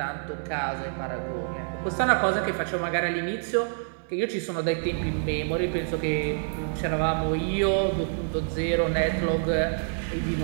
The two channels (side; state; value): left; silent; digital silence